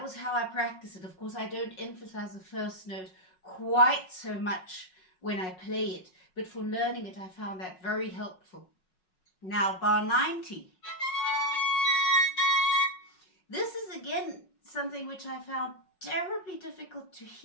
was how I practice it. Of course, I don't emphasize the first note quite so much when I play it, but for learning it, I found that very helpful. Now, bar 90. This is again something which I found terribly difficult to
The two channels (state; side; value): late; right; 5.4 ms